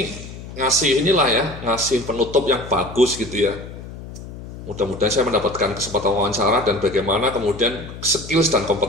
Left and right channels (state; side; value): noise; left; hum, 13 dB below the sound